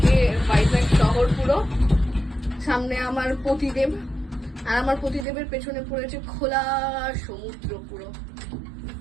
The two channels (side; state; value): left; drops out; at 5.2 s